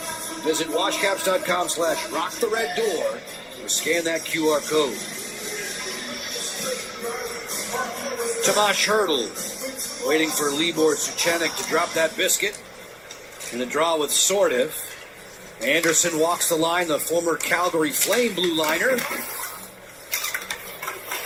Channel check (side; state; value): both; identical; correlation 1.00